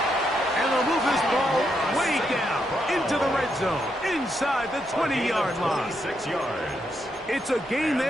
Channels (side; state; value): both; normal; correlation 0.80